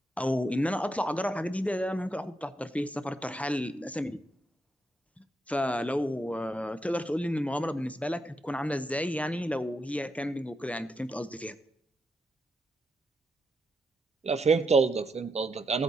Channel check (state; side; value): normal; both; correlation 0.82